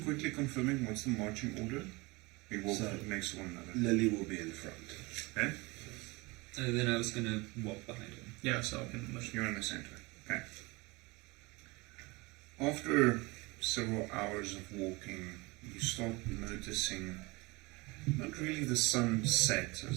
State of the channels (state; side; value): quieter; left; 24.6 dB